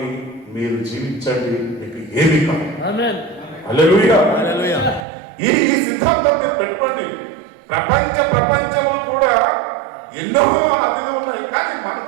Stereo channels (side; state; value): left; drops out; at 5.1 s